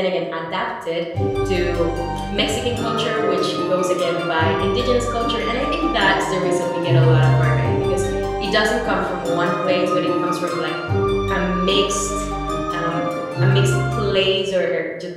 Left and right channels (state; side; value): identical; both; correlation 1.00